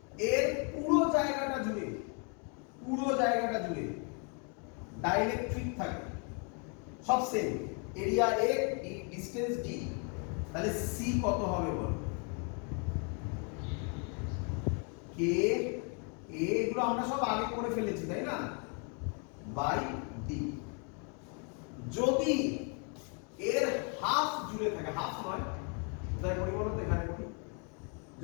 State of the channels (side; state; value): right; quieter; 37.8 dB